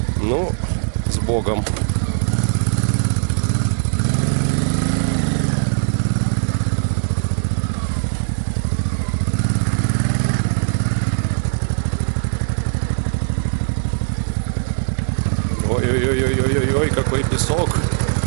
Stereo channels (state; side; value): silent; left; digital silence